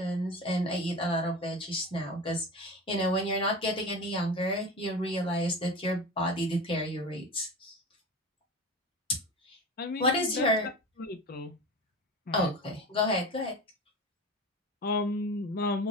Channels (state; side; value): normal; both; correlation 0.31